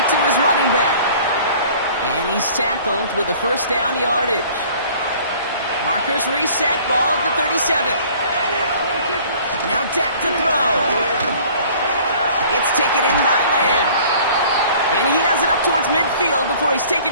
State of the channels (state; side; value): inverted; both; correlation -0.51